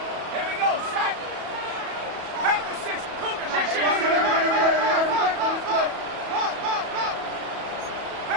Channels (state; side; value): late; left; 34 ms